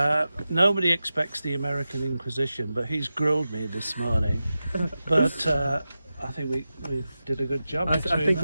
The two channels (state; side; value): inverted; both; correlation -0.93